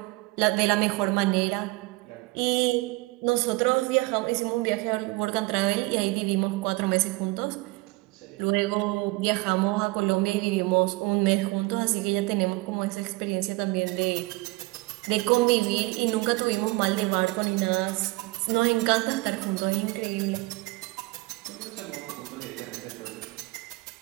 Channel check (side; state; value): left; quieter; 23.1 dB